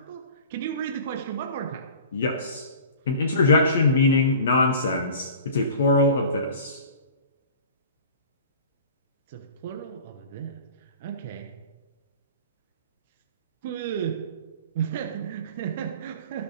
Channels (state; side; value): inverted; both; correlation -0.42